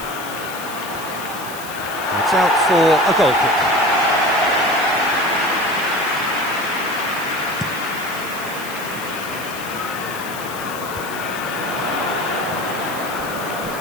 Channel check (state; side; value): noise; left; hiss, 13 dB below the sound